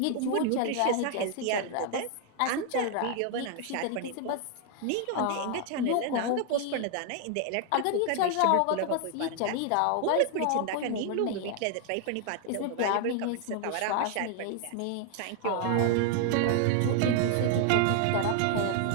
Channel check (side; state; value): both; different; correlation 0.00